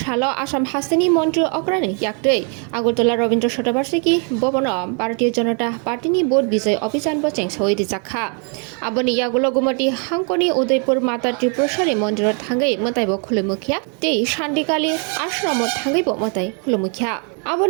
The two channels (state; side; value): quieter; left; 39.2 dB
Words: आसाम हास्तेनि मन्त्री अक्रानि याक्तै आगरतला रवीन्द्र शतबार्षिकी भवन भारतीय जनता पार्टीनि भोट विजय अभियान बचें सवै रिजाखा आबनि यागुल गुमति हांकनि उदयपुर माता त्रिपुरेश्वरी मन्दिर थांगै मताइबो खुलुमुखिया तै शान्तिकाली आश्रम थांगैबो मताइ खुलुमुखिया